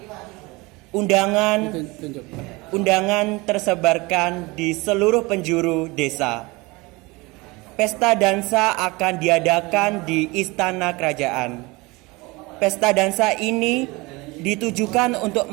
Undangan tersebarkan di seluruh penjuru desa. Pesta dansa akan diadakan di istana kerajaan. Pesta dansa ini ditujukan untuk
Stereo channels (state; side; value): quieter; left; 23.9 dB